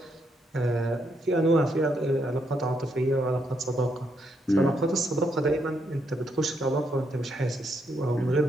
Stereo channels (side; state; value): both; normal; correlation 0.77